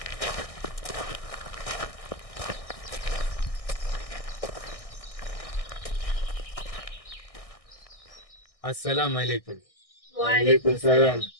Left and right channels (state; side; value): late; right; 1.6 ms